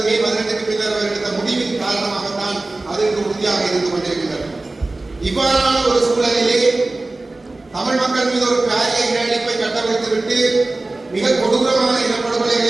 மே 18க்கு பின்னர் அவர் எடுத்த முடிவின் காரணமாகத்தான் அது இன்று உறுதியாக இருந்து கொண்டிருக்கின்றது. இவ்வாறான ஒரு சூழலிலே தமிழ் மக்கள் மீது ஒரு பாரிய இனஅழிப்பை கட்டமைத்துவிட்டு மிக கொடூரமான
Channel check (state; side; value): quieter; left; 3.0 dB